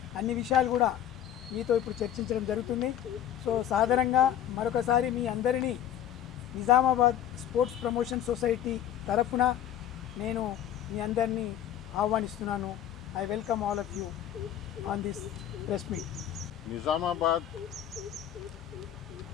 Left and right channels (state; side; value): quieter; right; 10.8 dB